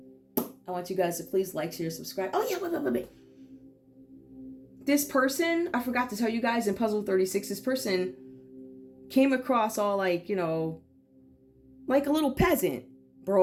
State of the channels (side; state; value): both; identical; correlation 1.00